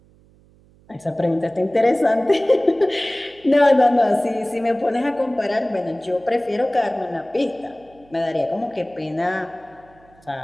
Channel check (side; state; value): right; noise; hum, 29 dB below the sound